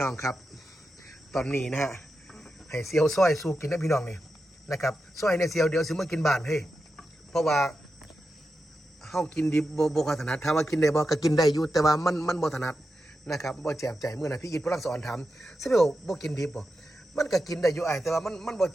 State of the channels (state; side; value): normal; both; correlation 0.89